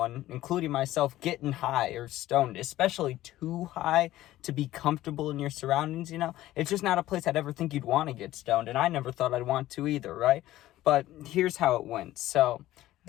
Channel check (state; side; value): quieter; right; 15.1 dB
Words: including myself, getting high or stoned, especially too high to be comfortable in your surroundings, It's just not a place I'd ever think you'd want to get stoned, and I never thought I'd want to either, right? But here's how it went. So